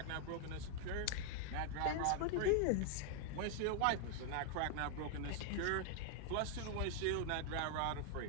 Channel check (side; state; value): both; different; correlation 0.00